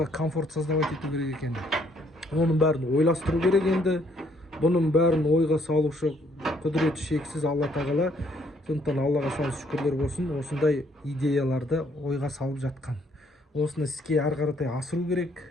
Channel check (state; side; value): normal; both; correlation 0.67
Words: комфорт создавать ету керек екен. Оның бәрін ойластыру керек енді. Бұның бәрін ойға салушы құдіреті шексіз Алла тағала. Сондықтан Аллаға сан шүкірлер болсын, осындай идеяларды ойға салып жатқан. Осыны іске ары қаратай асыру керек.